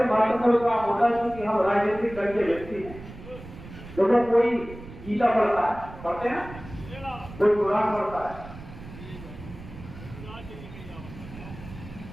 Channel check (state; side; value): noise; right; rumble, 15 dB below the sound